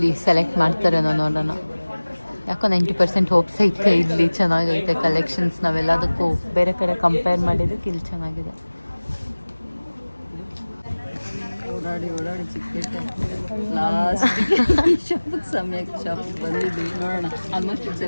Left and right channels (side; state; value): both; inverted; correlation -1.00